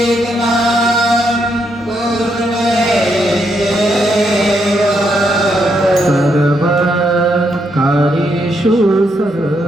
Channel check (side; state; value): both; normal; correlation 0.77